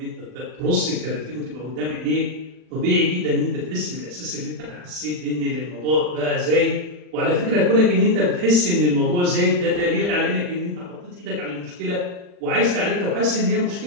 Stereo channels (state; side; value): late; left; 40 ms